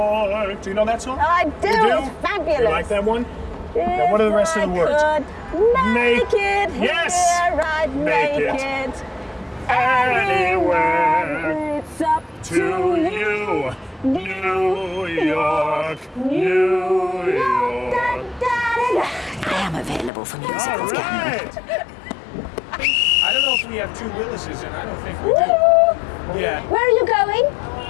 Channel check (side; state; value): right; drops out; at 20.1 s